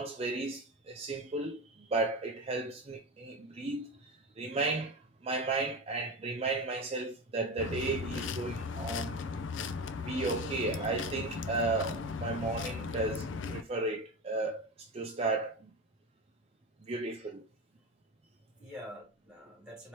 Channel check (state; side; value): normal; both; correlation 0.23